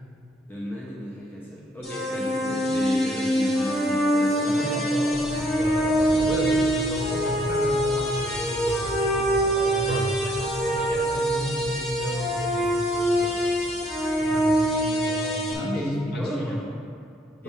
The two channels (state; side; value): normal; both; correlation 0.65